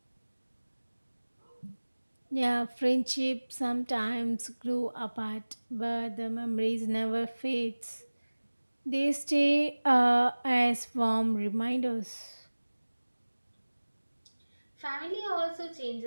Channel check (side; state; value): both; inverted; correlation -1.00